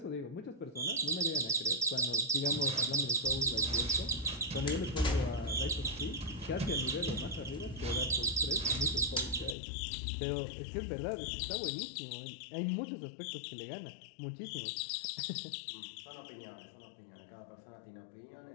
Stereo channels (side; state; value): right; drops out; at 9.6 s